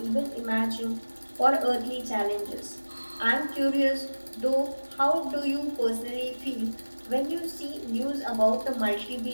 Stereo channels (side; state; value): both; inverted; correlation -1.00